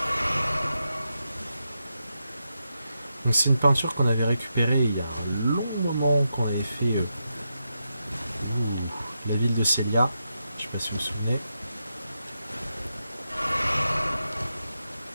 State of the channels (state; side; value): inverted; both; correlation -0.86